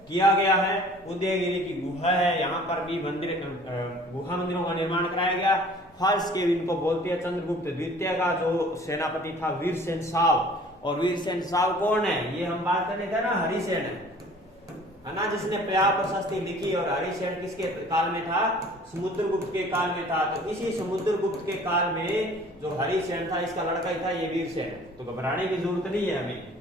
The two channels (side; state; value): both; normal; correlation 0.50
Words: किया गया है। उदयगिरी की गुहा है, यहाँ पर भी मंदिर गुहा मंदिरों का निर्माण कराया गया। फाल्स के इनको बोलते हैं। चंद्रगुप्त द्वितीय का जो सेनापति था वीरसेन साव, और वीरसेन साव कौन है, ये हम बात करने थे ना, हरिसेन है ना, जिसने प्रयाग प्रशस्ति लिखी। और हरिसेन किसके काल में था, समुद्रगुप्त के काल में था। तो इसी समुद्रगुप्त के काल में जो हरिसेन था इसका लड़का ही था ये वीरसेन। तो घबराने की जरूरत नहीं है हमें।